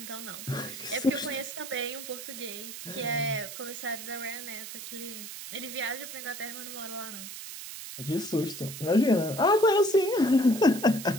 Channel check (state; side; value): noise; right; hiss, 10 dB below the sound